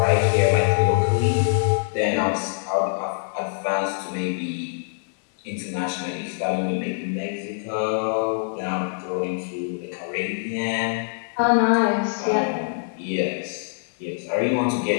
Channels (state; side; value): silent; right; digital silence